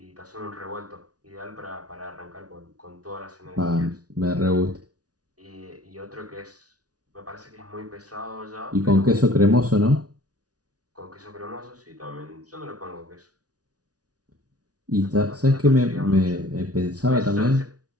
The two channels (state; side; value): late; left; 0.68 ms